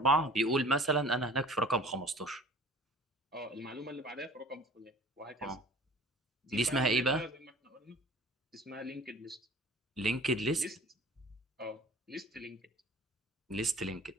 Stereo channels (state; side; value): normal; both; correlation 0.46